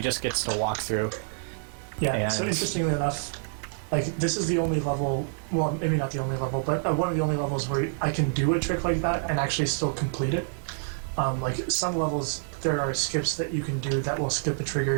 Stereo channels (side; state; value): left; silent; digital silence